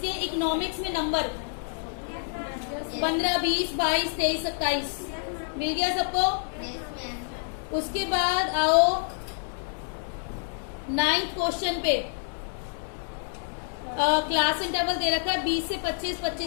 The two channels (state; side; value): silent; right; digital silence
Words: इकोनॉमिक्स में नंबर 15, 20, 22, 23, 27, मिल गया सबको। उसके बाद आओ 9th क्वेश्चन पे, क्लास इंटरवल दे रखा है 20 से 25,